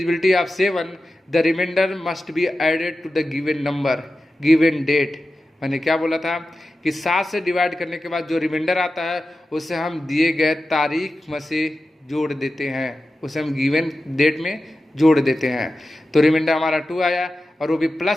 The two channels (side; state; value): both; normal; correlation 0.93